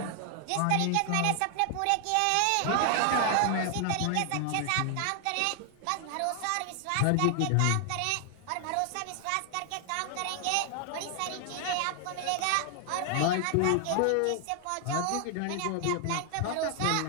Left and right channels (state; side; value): different; both; correlation 0.00